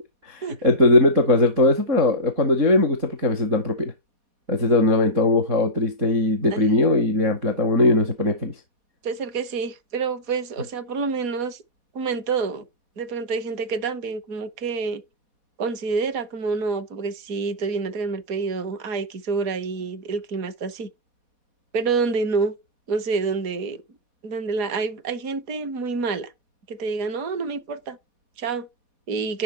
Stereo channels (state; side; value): late; left; 4.1 ms